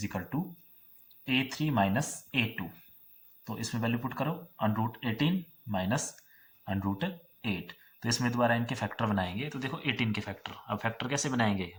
equal to a3 minus a2। तो इसमें वैल्यू पुट करो, √18 माइनस √8। तो इसमें दोबारा इनके फैक्टर बनाएंगे। तो देखो 18 के फैक्टर, अब फैक्टर कैसे बनाएंगे,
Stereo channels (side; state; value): both; identical; correlation 1.00